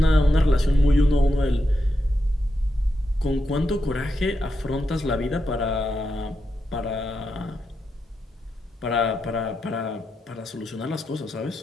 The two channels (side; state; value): both; normal; correlation 0.85